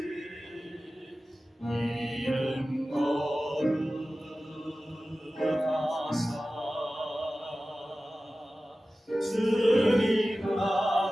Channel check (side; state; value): both; normal; correlation 0.96